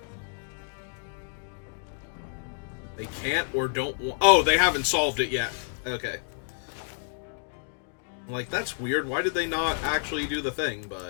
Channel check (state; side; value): silent; right; digital silence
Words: They can't or don't want... Oh, they haven't solved it yet. Okay. Like, that's weird. Why did they not actually do the thing,